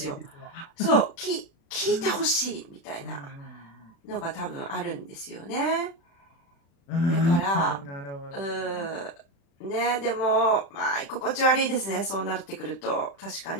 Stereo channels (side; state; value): right; late; 36 ms